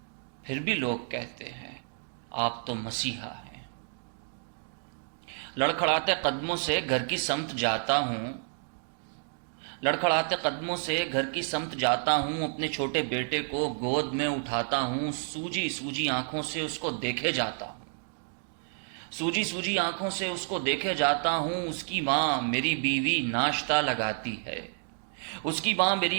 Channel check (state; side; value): silent; left; digital silence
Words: پھر بھی لوگ کہتے ہیں آپ تو مسیحا ہیں۔ لڑکھڑاتے قدموں سے گھر کی سمت جاتا ہوں، لڑکھڑاتے قدموں سے گھر کی سمت جاتا ہوں، اپنے چھوٹے بیٹے کو گود میں اٹھاتا ہوں، سوجی سوجی آنکھوں سے اس کو دیکھے جاتا ہوں، سوجی سوجی آنکھوں سے اس کو دیکھے جاتا ہوں۔ اس کی ماں میری بیوی ناشتہ لگاتی ہے، اس کی ماں میری